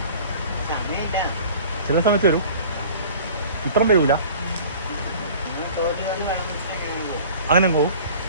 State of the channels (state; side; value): inverted; both; correlation -0.45